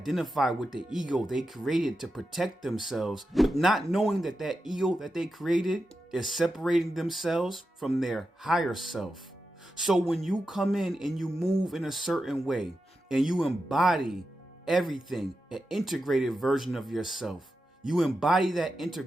with the ego they created to protect themselves, but not knowing that that ego that they created is separating themselves from their higher self. So when you come in and you move in a certain way and you embody everything, an integrated version of yourself, you embody that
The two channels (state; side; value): normal; both; correlation 0.89